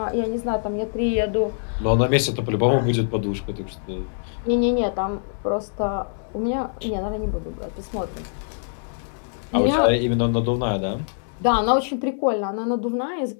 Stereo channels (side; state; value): right; silent; digital silence